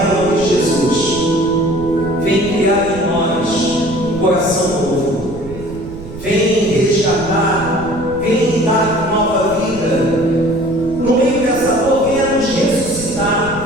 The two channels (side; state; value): right; noise; rumble, 13 dB below the sound